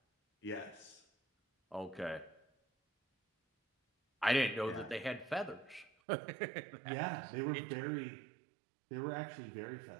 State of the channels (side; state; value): left; drops out; at 5.9 s